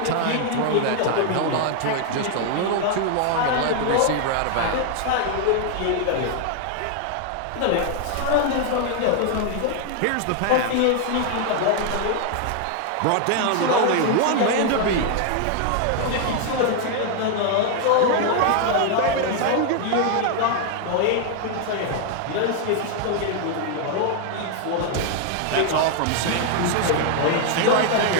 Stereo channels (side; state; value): both; different; correlation 0.00